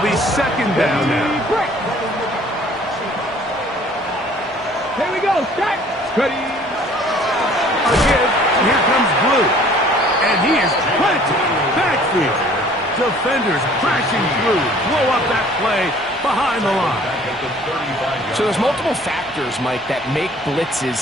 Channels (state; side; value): normal; both; correlation 0.54